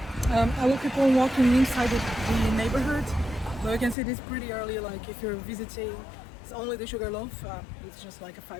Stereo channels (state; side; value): drops out; right; at 4.0 s